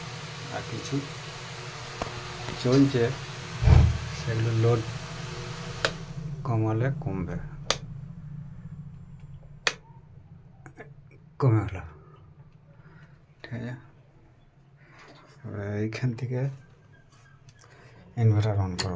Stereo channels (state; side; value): identical; both; correlation 1.00